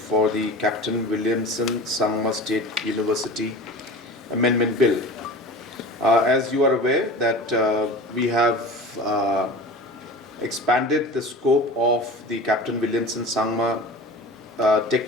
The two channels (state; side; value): normal; both; correlation 0.35